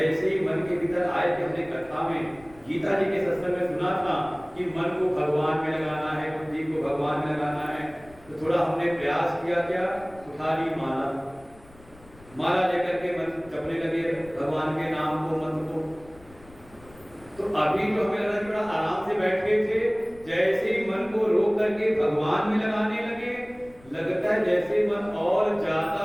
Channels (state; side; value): noise; left; rumble, 24 dB below the sound